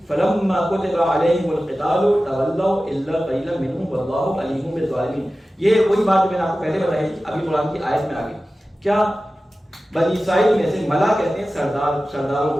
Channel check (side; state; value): both; normal; correlation 0.95